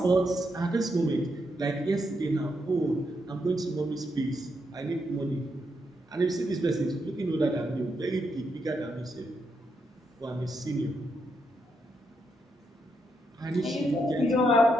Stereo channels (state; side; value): normal; both; correlation 0.80